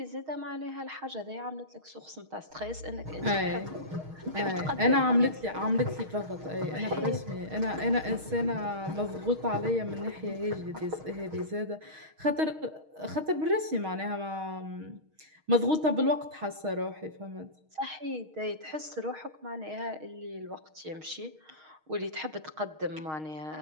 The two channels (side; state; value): left; late; 6.4 ms